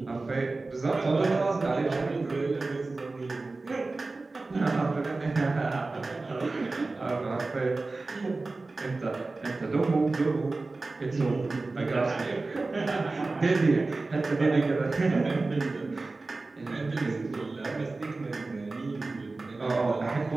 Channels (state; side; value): quieter; left; 3.5 dB